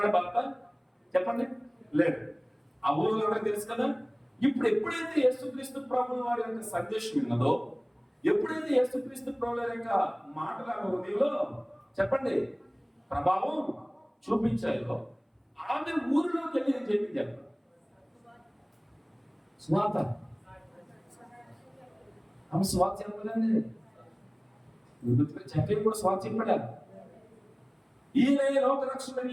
భర్త? చెప్పండి, లేదు. ఆ ఊరిలో ఎవరికి తెలుసు కదా. ఇప్పుడు ఎప్పుడైతే యేసుక్రీస్తు ప్రభువు వారి యొక్క సందేశం ఉన్నదో, ఎప్పుడైతే యేసుక్రీస్తు ప్రభువు యొక్క మాటల హృదయంలో చెప్పండి ప్రభావం చూపించాయో, ఆమె ఊరిలోకి వెళ్ళి అని చెప్పి చెప్పండి స్వాత. ఆమె స్వాత చెప్పదండి, చెప్పేది కూడా స్వాత చెప్పాడా? ఈయన లోక రక్షణ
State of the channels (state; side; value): identical; both; correlation 1.00